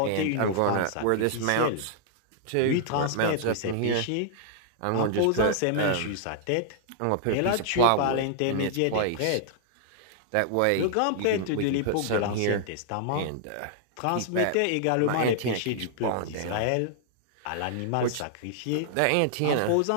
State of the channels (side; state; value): both; different; correlation -0.01